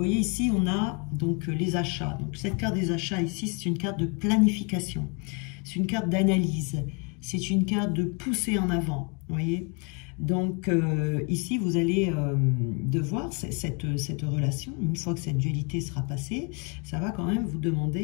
ici, on a donc les achats. Donc cette carte des achats ici, c'est une carte de planification. C'est une carte d'analyse. C'est une carte de pousser en avant. Vous voyez. Donc ici, vous allez devoir, cette relation, une fois que cette dualité sera passée, ça va quand même vous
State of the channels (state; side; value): quieter; right; 33.6 dB